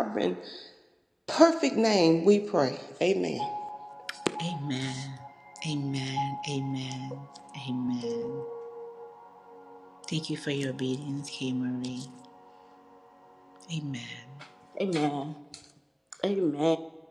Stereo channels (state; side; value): identical; both; correlation 1.00